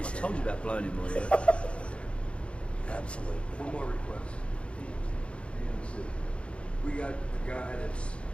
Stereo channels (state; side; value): late; right; 0.059 ms